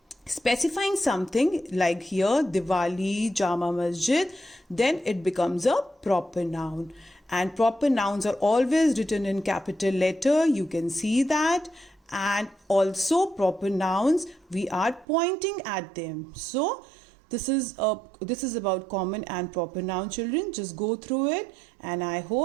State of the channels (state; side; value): drops out; left; at 15.1 s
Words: specifying something like here Diwali, Jama Masjid, then it becomes a proper noun. And proper nouns are always written in capital letter. You can see that. And also proper nouns, we are pointing at them. So this is about common and proper noun, children. Just go through it and I